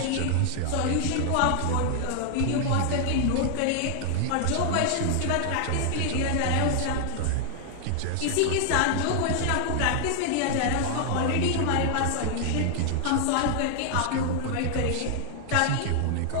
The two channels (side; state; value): both; different; correlation 0.00